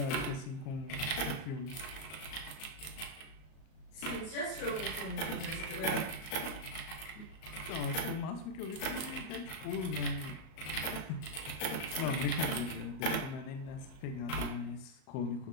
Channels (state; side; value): late; right; 38 ms